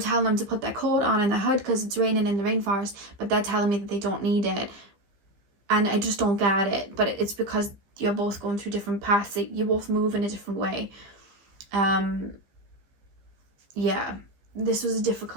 them to put their coat on and their hood because it's raining in the rainforest, but they're telling me that they don't need it. And I just don't get it. But it's because you're both going through different paths. You both move in a different way. Yeah, this was a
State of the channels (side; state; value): left; late; 15 ms